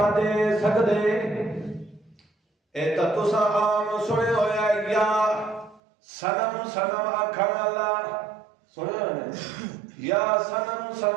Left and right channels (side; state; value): left; drops out; at 5.8 s